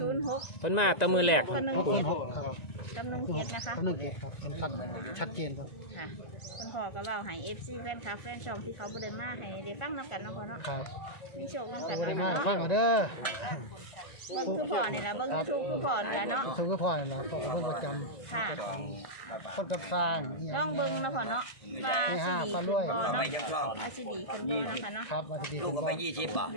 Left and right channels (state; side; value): late; right; 1.9 ms